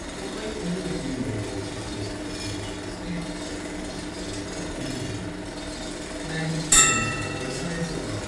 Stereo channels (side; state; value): both; identical; correlation 1.00